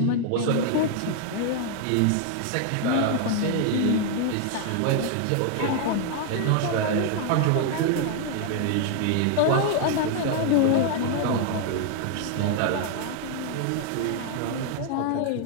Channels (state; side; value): different; both; correlation 0.00